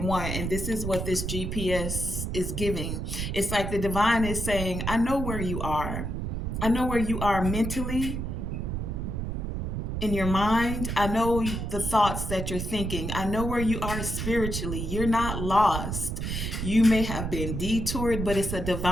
And this is what this GPS is giving. It's like the divine is saying, I know where you are. I know where you are mentally, in your mind. I know the thoughts that you're thinking. I know where you are spiritually. You're not lost. You may have been detoured, but it's a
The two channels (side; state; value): right; noise; rumble, 3 dB below the sound